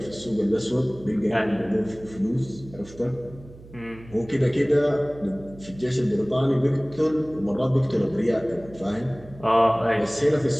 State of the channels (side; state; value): right; noise; hum, 19 dB below the sound